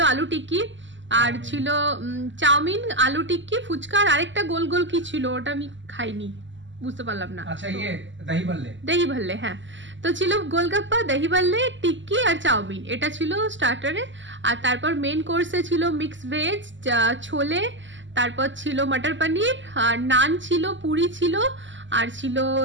আলু টিক্কি, আর ছিল চাউমিন, আলু টিক্কি, ফুচকা, আর আরেকটা গোল গোল কি ছিল ওটা আমি খাইনি, বুঝতে পারলাম না। আচ্ছা, দহি ভল্লে, হ্যাঁ। তো ছিল গোলগাপ্পা, দহি ভল্লে, টিক্কি আর চাউমিন, এটা ছিল স্টার্টারে। আর তারপর মেন কোর্সে ছিল মিক্স ভেজ, ছোলে, তারপর ছিল মটর পনির, আর নান ছিল, পুরি ছিল, আর ছিল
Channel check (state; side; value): late; left; 0.54 ms